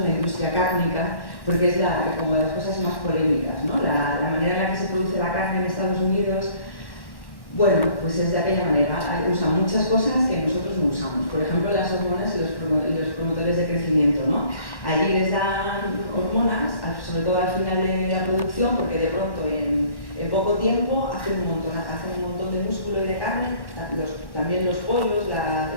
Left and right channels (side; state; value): right; late; 1.1 ms